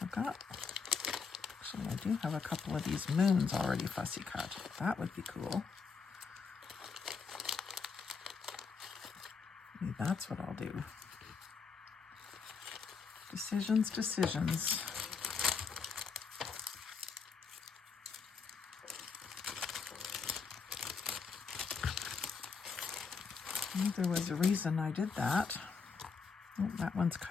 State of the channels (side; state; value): right; quieter; 5.4 dB